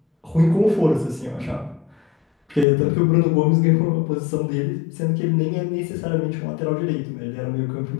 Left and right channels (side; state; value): right; drops out; at 2.7 s